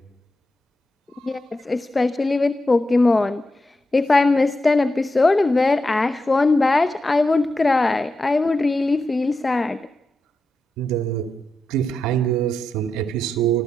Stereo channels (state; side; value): normal; both; correlation 0.88